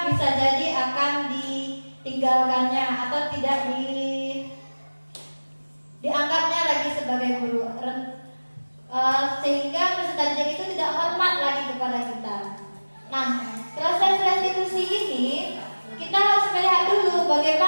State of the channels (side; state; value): both; inverted; correlation -1.00